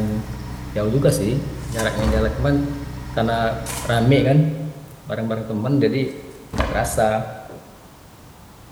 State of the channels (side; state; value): both; identical; correlation 1.00